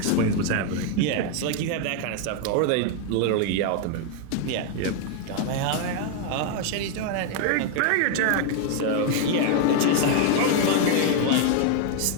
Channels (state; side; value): different; both; correlation 0.00